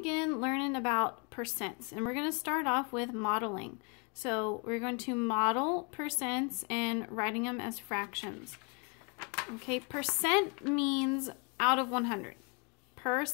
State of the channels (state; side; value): quieter; right; 34.0 dB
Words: learning about percents, and we're going to start off with modeling. So we're going to model percents and writing them as fractions. Okay, percent means out of 100.